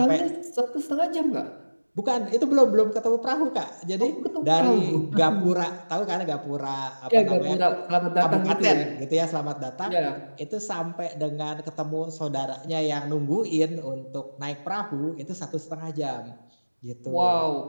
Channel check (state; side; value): inverted; both; correlation -1.00